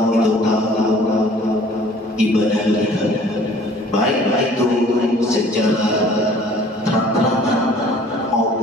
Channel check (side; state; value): both; normal; correlation 0.52